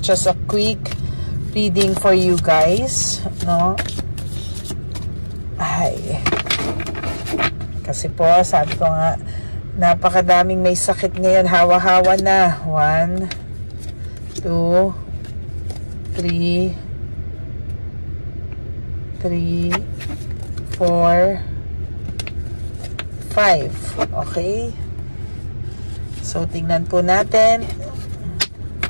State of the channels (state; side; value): inverted; both; correlation -1.00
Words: a quick reading for you guys, no? Ay, kasi po, sabi ko nga, napakadaming may sakit ngayon. Hawa-hawa na. 1, 2, 3, 4, 5. Okay? So, tingnan po natin.